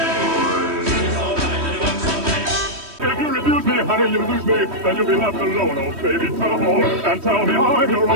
If you refuse me, honey, you lose me, then you'll be left alone, oh baby, come on, and tell me I'm your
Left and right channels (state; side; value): late; left; 3.1 ms